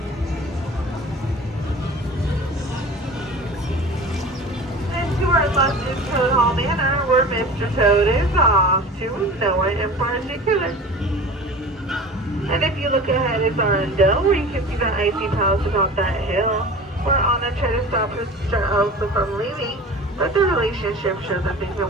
To our left is Toad Hall Manor, where Mr. Toad is off to nowhere in particular. And if you look ahead, it's Arendelle, where you can see the icy palace atop that hill, where Anna tried to stop her sister Elsa from leaving, but the relationship shows that they can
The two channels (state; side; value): normal; both; correlation 0.38